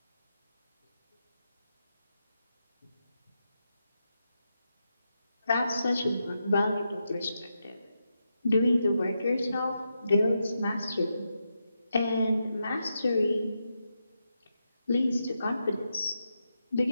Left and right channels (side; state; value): both; inverted; correlation -0.86